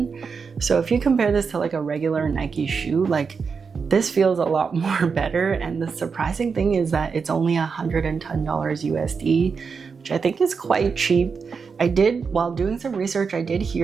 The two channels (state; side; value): quieter; left; 5.5 dB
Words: So if you compare this to like a regular Nike shoe, like this feels a lot more better. And the surprising thing is that it's only $110 USD, which I think is quite cheap. While doing some research, I did